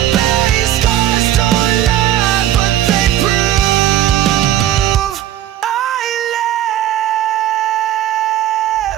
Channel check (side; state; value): left; quieter; 12.3 dB